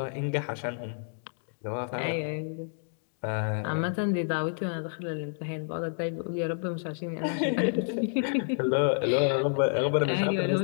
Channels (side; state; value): right; silent; digital silence